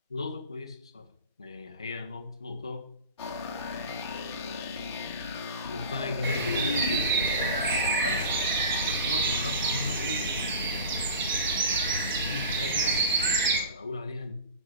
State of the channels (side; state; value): both; inverted; correlation -0.32